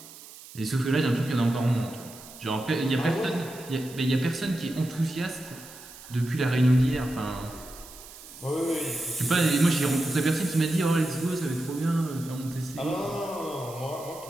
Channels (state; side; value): noise; right; hiss, 17 dB below the sound